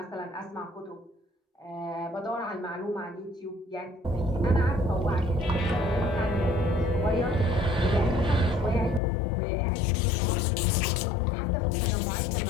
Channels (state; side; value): drops out; right; at 9.0 s